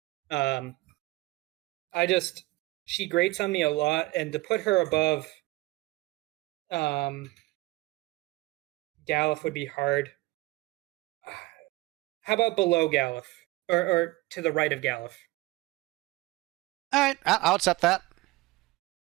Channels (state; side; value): quieter; left; 20.5 dB